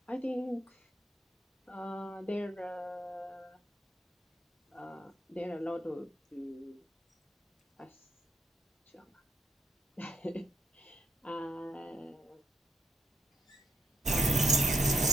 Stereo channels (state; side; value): normal; both; correlation 0.75